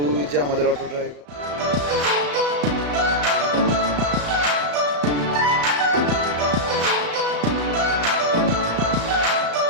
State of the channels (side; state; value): left; late; 35 ms